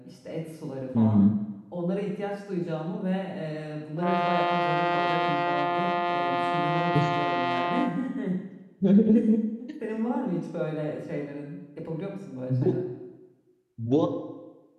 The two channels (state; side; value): identical; both; correlation 1.00